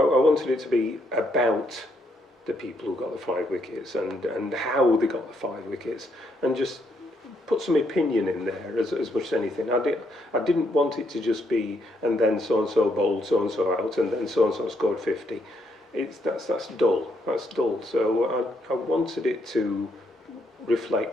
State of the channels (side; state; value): both; normal; correlation 0.75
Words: I wanted it to be about the people who got the 5 wickets and how they got the 5 wickets, and just put some opinion in there as much as anything. I didn't want it to just be, and then so-and-so bowled so-and-so out, and then so-and-so scored 50. That's dull. That's dull. So I wanted it to